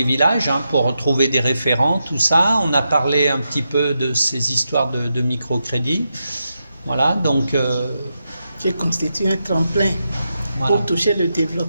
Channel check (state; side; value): inverted; both; correlation -0.86